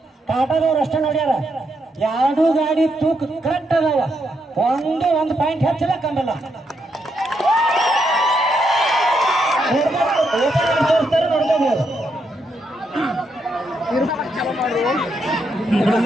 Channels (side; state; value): both; normal; correlation 0.80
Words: ಕಾಟದವ್ರು ಅಷ್ಟೇ ನೋಡ್ಯಾರ. ಎರಡು ಗಾಡಿ ತೂಕ ಕರೆಕ್ಟ್ ಅದಾವ, ಒಂದು ಪಾಯಿಂಟ್ ಹೆಚ್ಚಿಲ್ಲ ಕಮ್ಮಲ್ಲ. ತೋರಿಸ್ತಾರೆ ನೋಡ್ಕೋಬಹುದು.